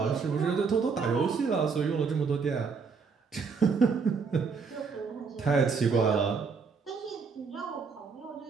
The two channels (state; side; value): quieter; left; 5.2 dB